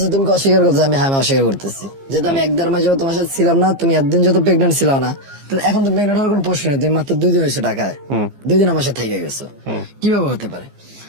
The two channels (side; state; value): left; late; 15 ms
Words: তুমি কি অস্বীকার করতেছো? আমি হ্যাঁ আমি অস্বীকার করতেছি, যেহেতু আমি 1-1.5 মাস যাবত তোমার সাথে ছিলাম না, তুমি একদিন যত প্রেগনেন্ট ছিল না, তাহলে এখন তো প্রেগনেন্ট হওয়ার কোনো প্রশ্ন নেই, তুমি মাত্র 2 দিন হয়েছে ঢাকায়, 2 দিন আমার সাথে থেকে গেছো, কিভাবে হতে পারে?